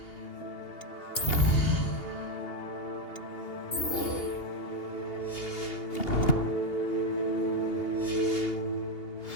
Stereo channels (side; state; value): right; late; 2.8 ms